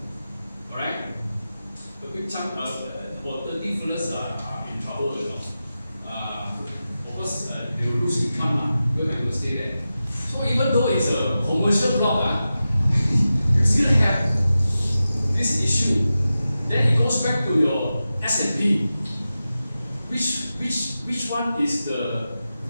Alright? A big chunk, about 30 fellas are in trouble, you know. Of course, they will lose income because they will stay there. So even though it's a commercial block, you still have this issue. Then it goes back to your S&P. Which one is the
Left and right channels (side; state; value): both; inverted; correlation -0.93